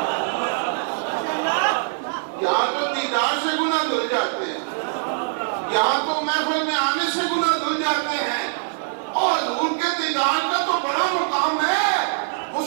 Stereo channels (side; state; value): left; silent; digital silence